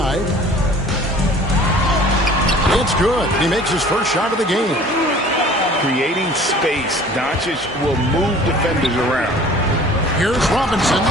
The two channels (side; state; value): both; normal; correlation 0.48